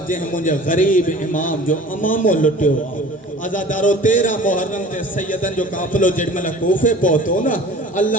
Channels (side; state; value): both; normal; correlation 0.44